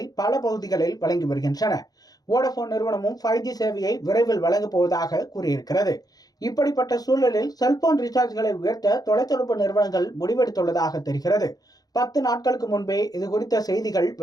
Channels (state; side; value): late; right; 0.18 ms